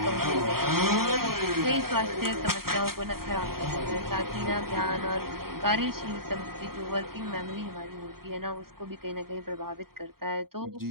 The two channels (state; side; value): late; left; 0.93 ms